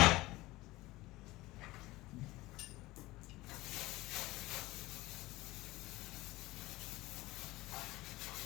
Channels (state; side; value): quieter; right; 19.4 dB